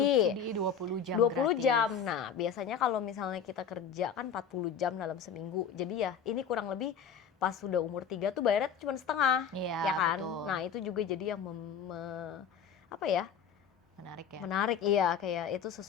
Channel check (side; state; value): right; quieter; 7.0 dB